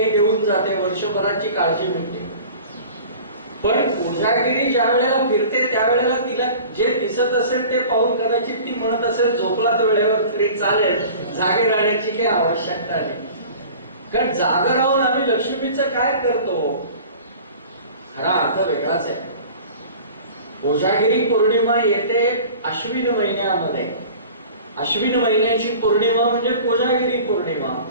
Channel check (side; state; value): both; inverted; correlation -0.42